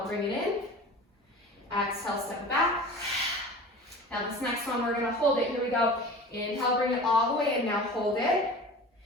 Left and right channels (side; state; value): both; normal; correlation 0.37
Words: bring it in. Exhale, step it back. Now this next one, we're gonna hold it. Here we go. Inhale, bring it all the way in. Now hold it.